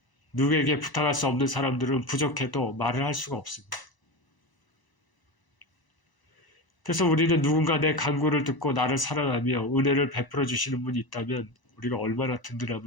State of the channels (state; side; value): late; right; 1.0 ms